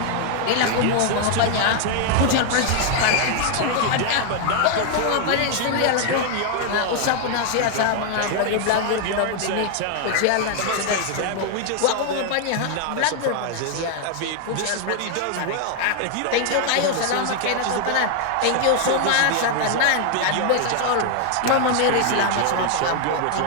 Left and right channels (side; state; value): both; different; correlation 0.00